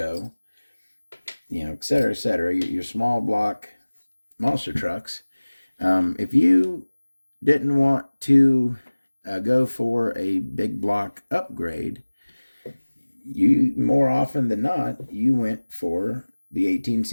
et cetera, your small block monster trucks, if you didn't want to go for a big block upgrade, you more often than not, you went for the 18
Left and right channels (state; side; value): inverted; both; correlation -1.00